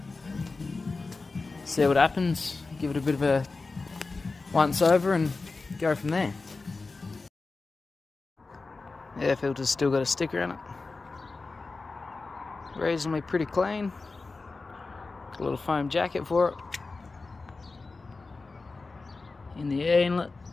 See what happens, give it a bit of a once over and go from there. Air filter's still got a sticker on it. Reasonably pretty clean. Got a little foam jacket for it. In the air inlet,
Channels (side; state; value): right; quieter; 3.8 dB